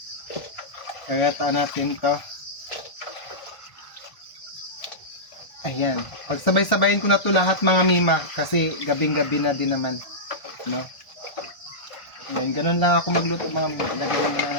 Kagataan natin to. Ayan. Pagsabay-sabayin ko na to lahat mga mima. Kasi gabing-gabi na din naman. No? Ayan, ganun lang ako magluto mga mima. Ilagay muna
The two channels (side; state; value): right; late; 1.4 ms